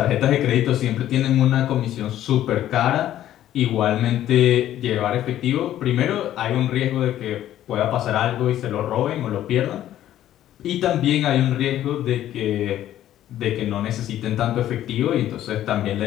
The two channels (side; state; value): right; quieter; 12.4 dB